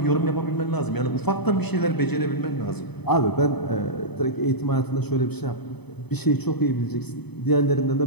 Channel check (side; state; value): right; late; 0.98 ms